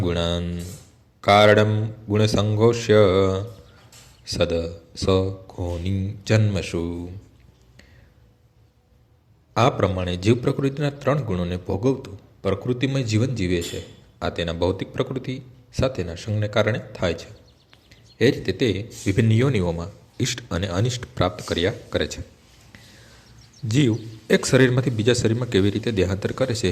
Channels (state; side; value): identical; both; correlation 1.00